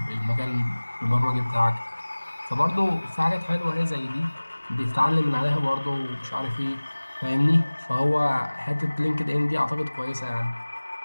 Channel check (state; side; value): inverted; both; correlation -1.00